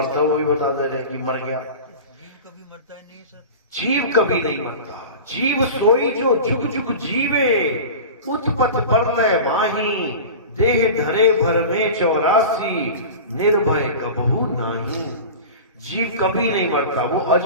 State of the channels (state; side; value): inverted; both; correlation -0.33